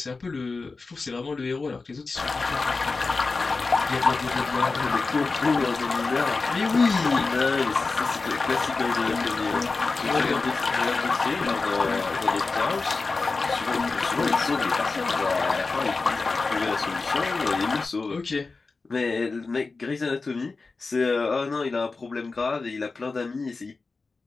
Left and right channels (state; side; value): quieter; right; 4.0 dB